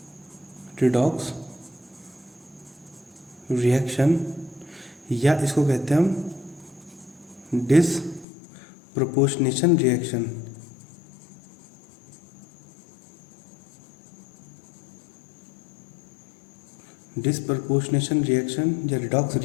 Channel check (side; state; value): right; drops out; at 8.2 s